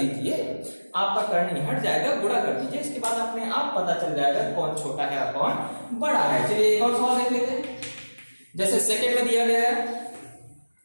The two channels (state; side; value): inverted; both; correlation -1.00